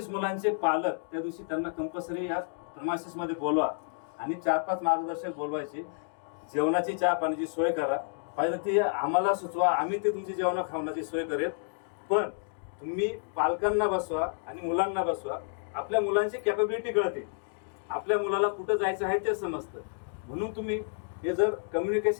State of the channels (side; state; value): right; silent; digital silence